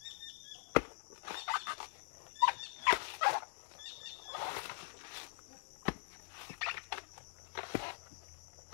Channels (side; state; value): right; silent; digital silence